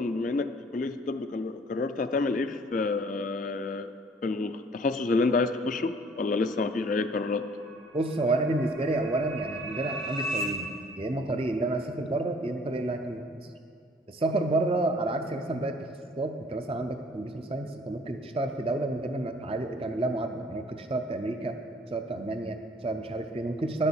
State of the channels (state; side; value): normal; both; correlation 0.55